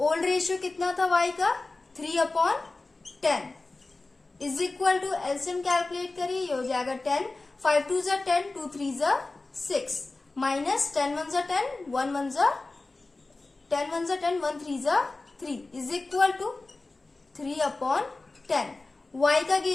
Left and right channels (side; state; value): right; quieter; 3.3 dB